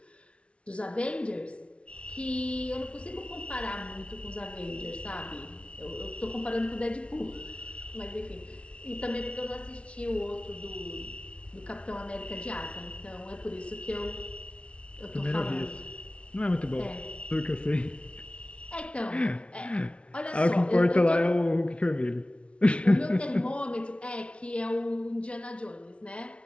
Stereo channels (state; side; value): late; right; 0.060 ms